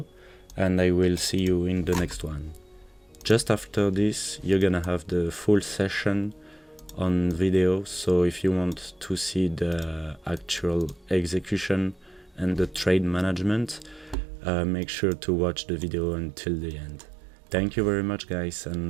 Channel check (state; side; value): drops out; left; at 14.2 s